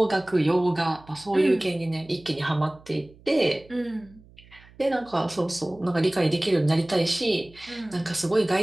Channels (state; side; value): noise; right; hum, 25 dB below the sound